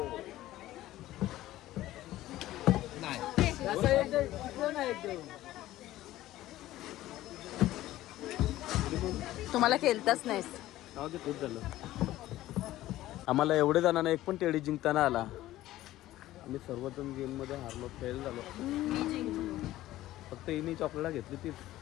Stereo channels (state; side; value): quieter; right; 15.3 dB